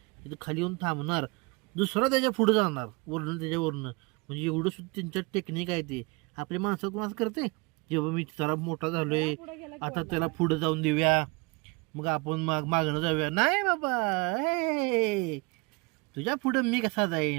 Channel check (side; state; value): left; quieter; 27.3 dB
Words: तिथे खाली येऊन थांबणार, दुसरा त्याच्या पुढे जाणार वरनं त्याच्यावरनं. म्हणजे एवढं सुद्धा त्यांच्यात टेक्निक आहे. ते आपल्या माणसं कोणाच करते, जेव्हा मी जरा मोठा झालोय आता त्याला पुढे जाऊन देऊया, मग आपण मागणं जाऊया. नाही बाबा, हे तुझ्या पुढे मी कसा